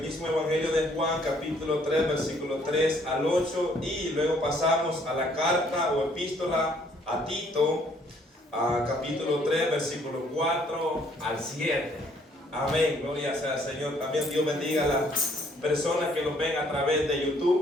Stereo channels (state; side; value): normal; both; correlation 0.64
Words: Evangelio de Juan, capítulo 3, versículo 3 al 8. Y luego pasamos a la carta o epístola a Tito, capítulo 3, versículo 4 al 7. Amén, gloria sea al Señor. También Dios bendiga a las personas que nos ven a través de